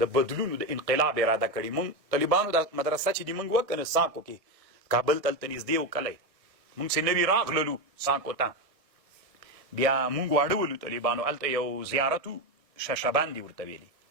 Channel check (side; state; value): left; late; 1.5 ms